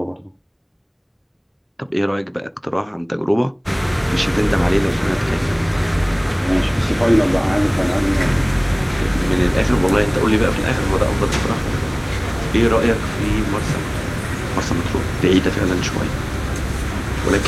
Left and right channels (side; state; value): both; identical; correlation 1.00